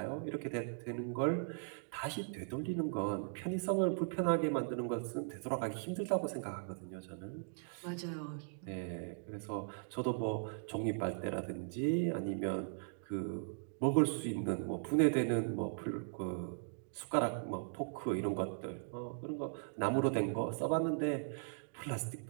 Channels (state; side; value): silent; left; digital silence